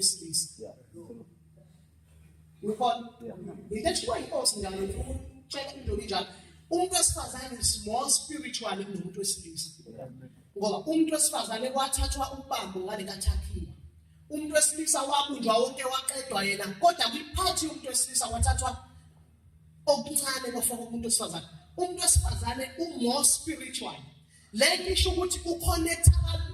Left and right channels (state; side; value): identical; both; correlation 1.00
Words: Ngikho into ethiwa inkosi njalo check into njalo. Umuntu wesifazane is more spiritual than umuntu wesilisa. Ngoba umuntu wesifazane kwathathwa ubambo ngale kaThakhiwa. Umuntu wesilisa wabunjwa wonke waqedwa yena, kodwa kwiphathi umuntu wesilisa wathathwa okuncane bafaka umuntu wesifazane. Umuntu wesifazane more spiritual. Lento isho ukuthi uconnecta